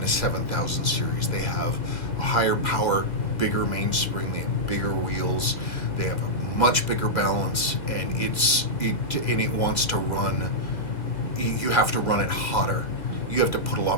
a 7000 series. They have a higher power, bigger mainspring, they have bigger wheels, they have a much bigger balance, and it wants to run. You have to run it hotter. You have to put a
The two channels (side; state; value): right; late; 2.0 ms